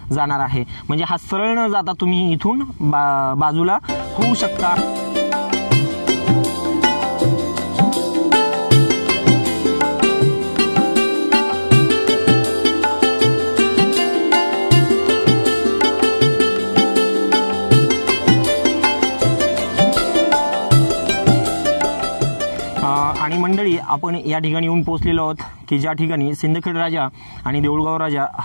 जाणार आहे, म्हणजे हा सरळ न जाता तुम्ही इथून बाजूला होऊ शकता। आणि मंडळी आपण या ठिकाणी येऊन पोहोचलेलो आहोत की ज्या ठिकाणी सिंदखेड राजा आणि देऊळगाव राजा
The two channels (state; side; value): inverted; both; correlation -1.00